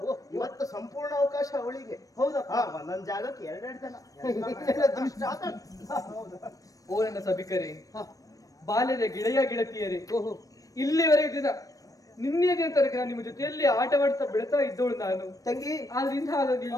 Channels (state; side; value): late; right; 0.17 ms